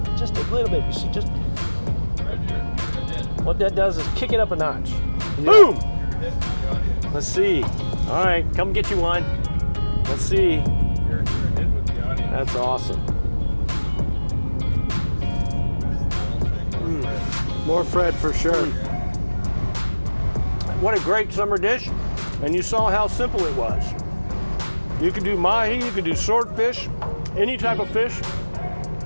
little bit. You see, just what that does is kick it up a notch. Yeah. Boom. Let's see. All right, come get you one. Let's see. That's awesome. More Fred for sure. What a great summer dish. And you saw how simple it was. You can do mahi, you can do swordfish, any type of fish.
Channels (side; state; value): both; inverted; correlation -1.00